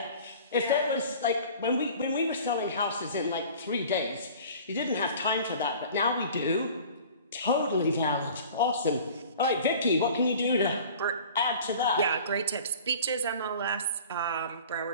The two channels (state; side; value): inverted; both; correlation -0.44